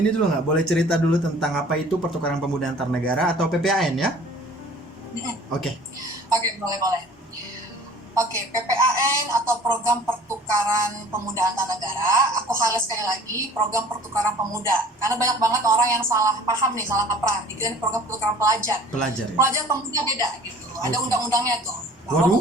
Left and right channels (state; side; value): normal; both; correlation 0.48